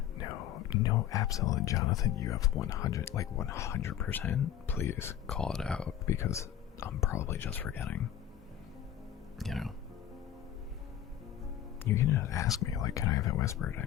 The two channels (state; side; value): quieter; right; 10.8 dB